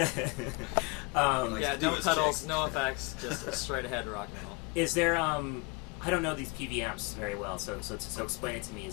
Like Yeah, to do no his pedals, chicks. no effects, just a straight ahead rock and roll. Is there I don't know these PV amps very well, so explain it to me.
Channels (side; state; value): right; quieter; 29.0 dB